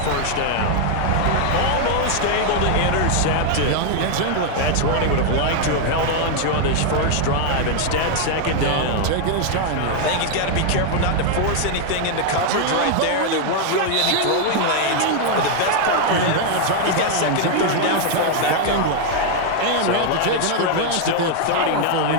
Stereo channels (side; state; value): both; different; correlation 0.00